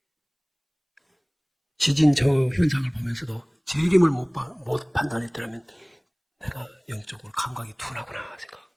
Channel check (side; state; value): both; identical; correlation 1.00